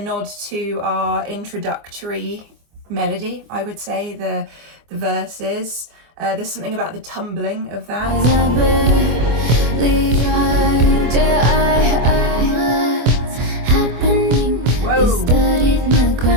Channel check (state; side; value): late; left; 24 ms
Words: to our introductory melody, I would say, the verses. There's something about the tumbling of that. Whoa.